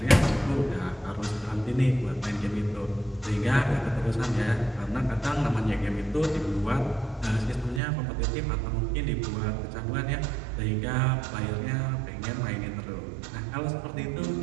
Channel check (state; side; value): drops out; left; at 7.8 s